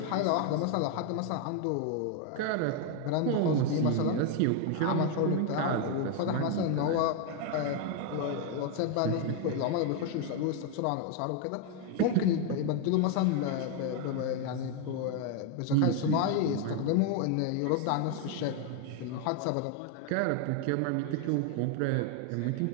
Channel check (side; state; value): both; different; correlation 0.01